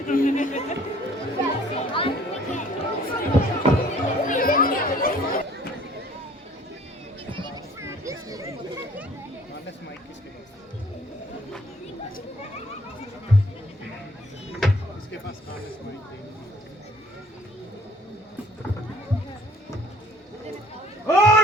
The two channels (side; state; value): both; normal; correlation 0.56